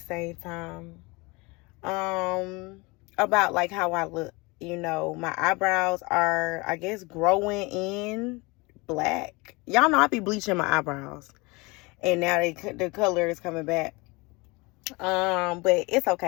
time. About like how I look. My eyebrows are, I guess, growing in black. Y'all know I be bleaching my eyebrows. And now the color is coming back. But it's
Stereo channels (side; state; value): right; quieter; 25.7 dB